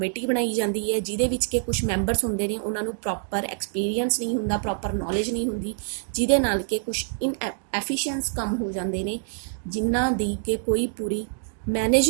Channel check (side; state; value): left; silent; digital silence